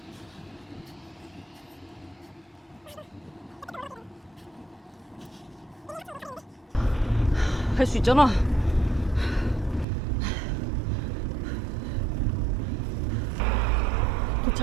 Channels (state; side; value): drops out; left; at 9.9 s